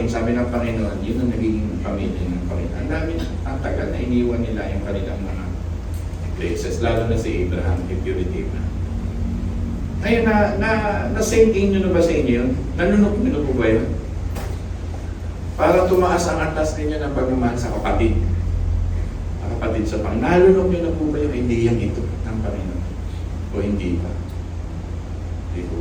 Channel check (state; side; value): identical; both; correlation 1.00